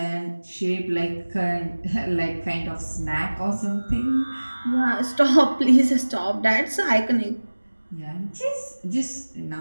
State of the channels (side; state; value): both; inverted; correlation -1.00